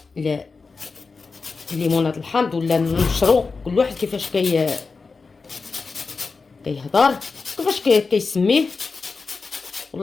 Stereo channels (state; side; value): quieter; right; 4.4 dB